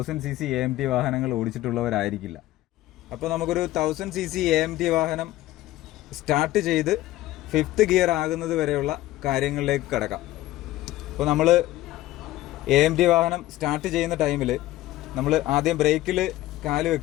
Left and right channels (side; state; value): right; quieter; 15.8 dB